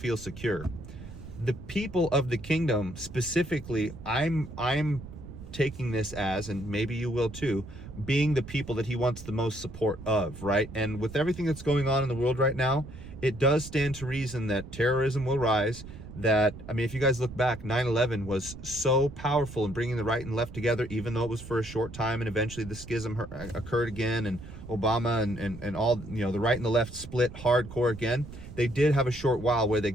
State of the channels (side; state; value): right; noise; rumble, 13 dB below the sound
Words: secure. The people of the kingdom specifically, I'm taking this as, and maybe you will too, being the people that he wants the most support of, right? And with everything that's going on in the world right now, it does stand to reason that terrorism will rise. That, I mean, if you guys look back, 9/11 was so powerful in bringing the right and left together, even though it was for a short time, and eventually the schism occurred again, and Obama and all, you know, the right and the left split hardcore again. They did have a short while where they